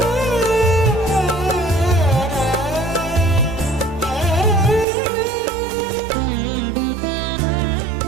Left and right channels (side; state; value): left; drops out; at 4.9 s